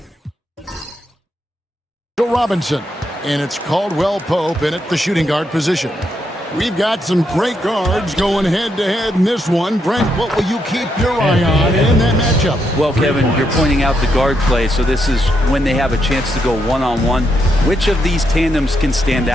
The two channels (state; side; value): normal; both; correlation 0.80